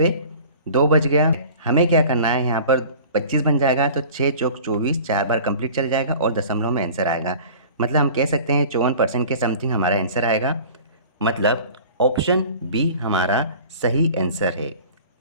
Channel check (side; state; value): both; inverted; correlation -0.43